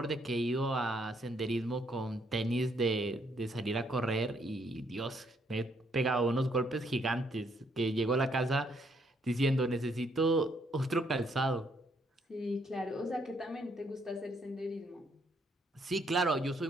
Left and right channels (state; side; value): normal; both; correlation 0.71